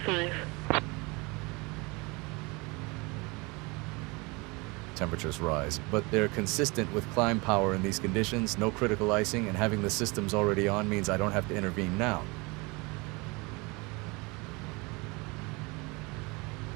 Temperatures rise, but they're consistent with climb power in these conditions, no critical icing, and having the systems already on means I don't have to intervene now.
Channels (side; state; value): left; quieter; 26.6 dB